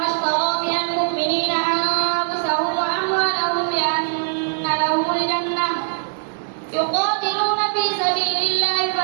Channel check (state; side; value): silent; left; 65 dB below the other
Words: اشترى من المؤمنين أنفسهم وأموالهم بأن لهم الجنة يقاتلون في سبيل الله